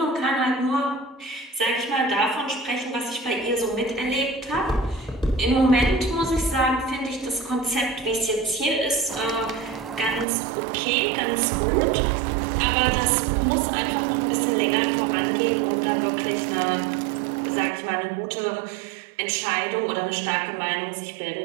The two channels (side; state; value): left; drops out; at 10.2 s